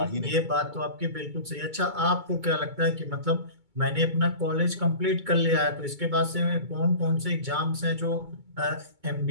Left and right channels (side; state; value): left; late; 2.2 ms